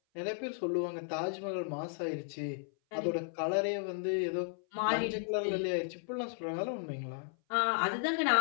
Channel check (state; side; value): silent; right; 55 dB below the other